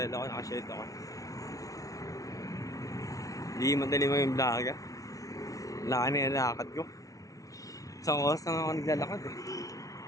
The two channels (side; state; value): right; late; 0.17 ms